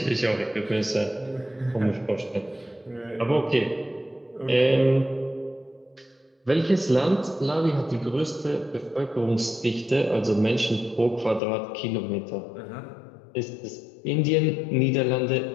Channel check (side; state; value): right; drops out; at 11.4 s